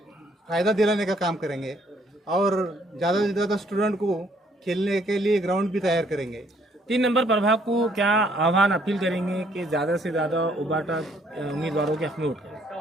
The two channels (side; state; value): both; normal; correlation 0.66